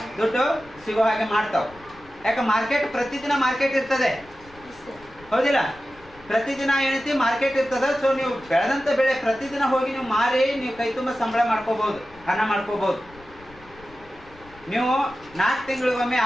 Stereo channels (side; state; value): left; noise; rumble, 24 dB below the sound